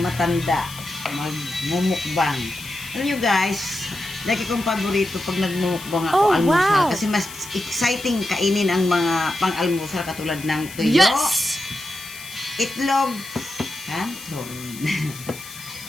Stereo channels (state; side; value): noise; left; hiss, 15 dB below the sound